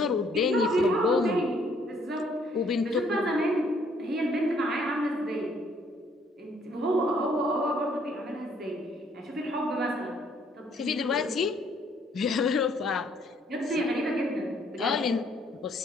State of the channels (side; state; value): both; normal; correlation 0.65